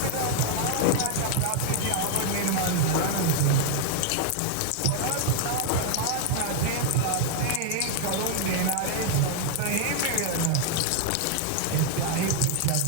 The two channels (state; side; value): different; both; correlation 0.00